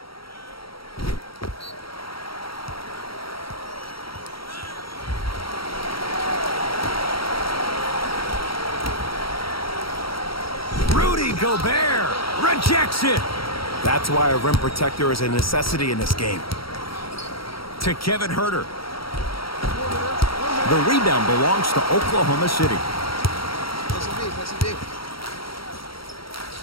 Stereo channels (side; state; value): right; late; 0.75 ms